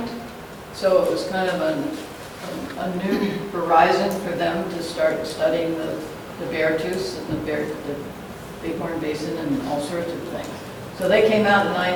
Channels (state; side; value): identical; both; correlation 1.00